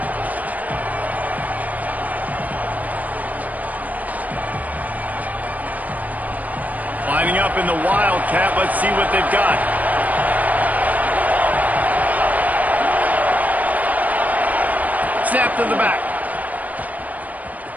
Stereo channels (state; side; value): late; left; 0.075 ms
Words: Lining up in the Wildcat. Let's see what they've got. Snap to the back.